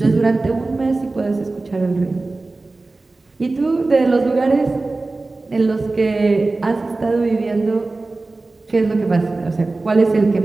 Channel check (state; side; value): quieter; left; 3.3 dB